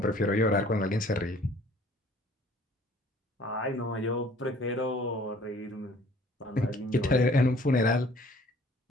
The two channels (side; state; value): both; normal; correlation 0.54